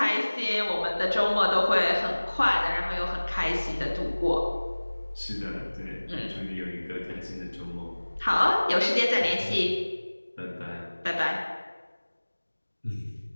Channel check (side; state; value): both; inverted; correlation -1.00